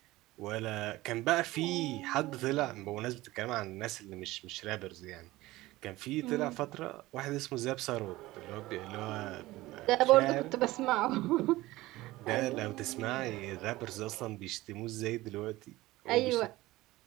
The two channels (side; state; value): left; quieter; 18.3 dB